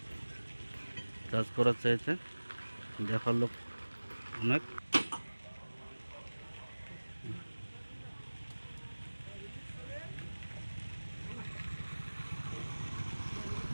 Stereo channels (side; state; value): both; inverted; correlation -1.00